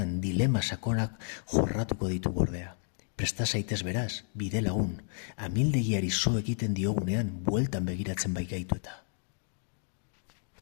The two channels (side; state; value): right; silent; digital silence